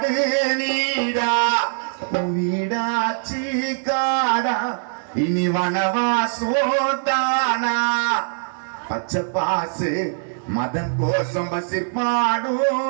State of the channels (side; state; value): left; silent; digital silence